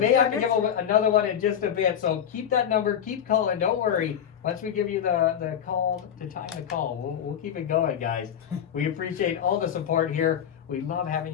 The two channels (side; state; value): right; quieter; 9.0 dB